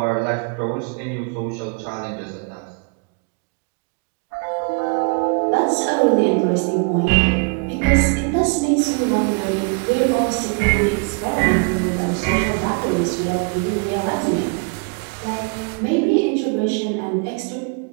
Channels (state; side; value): quieter; left; 34.8 dB